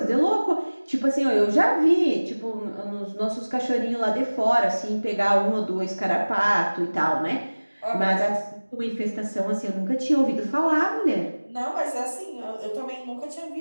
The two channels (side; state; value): both; inverted; correlation -1.00